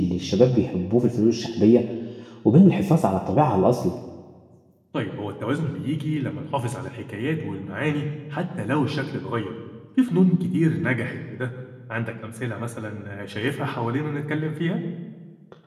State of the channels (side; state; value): both; identical; correlation 1.00